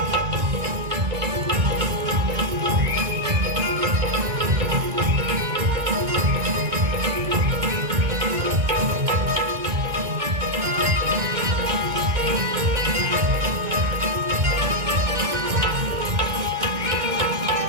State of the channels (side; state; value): left; late; 1.9 ms